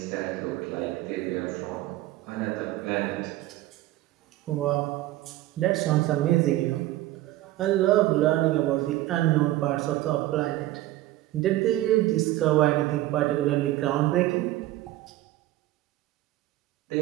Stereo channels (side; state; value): left; quieter; 15.8 dB